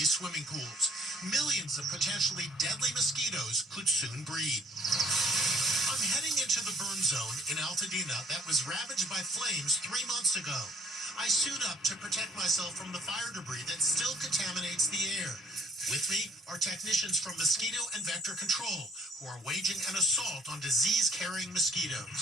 swimming pools. Millions of potentially deadly mosquitoes could soon breed. I'm heading into the burn zone in Altadena that was ravaged by flames 3 months ago. I suit up to protect myself from the fire debris that still contaminates the air. With me are technicians from Mosquito and Vector Control, who are waging an assault on disease-carrying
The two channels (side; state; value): both; normal; correlation 0.60